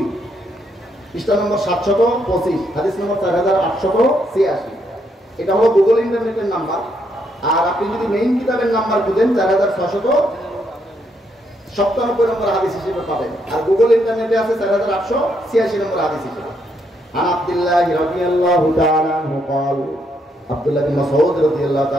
পৃষ্ঠা নম্বর 725, হাদিস নম্বর 4886। এটা হলো গুগল ইন্টারনেটের নাম্বার। আর আপনি যদি মেইন কিতাবের নাম্বার খুঁজেন 4697 নম্বর হাদিস হিসেবে পাবেন। আর গুগল ইন্টারনেটে আছে 4886 নম্বর হাদিস হিসেবে। আন আব্দুল্লাহ রাদিয়াল্লাহু তাআলা আনহু قال, আব্দুল্লাহ বিন মাসউদ রাদিয়াল্লাহু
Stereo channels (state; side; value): normal; both; correlation 0.75